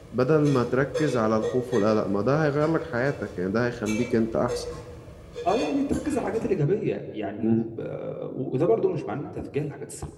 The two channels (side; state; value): both; identical; correlation 1.00